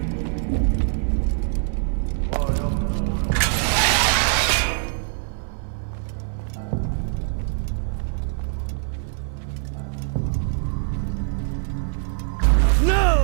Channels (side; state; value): left; silent; 60 dB below the other